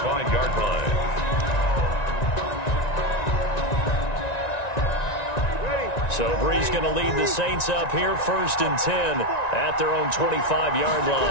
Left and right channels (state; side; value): late; right; 1.9 ms